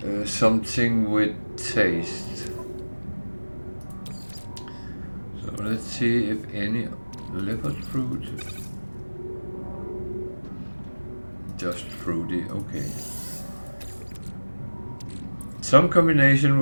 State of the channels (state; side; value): inverted; both; correlation -1.00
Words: something with taste. So let's see if any livered fruit. Just fruity, okay. Some combination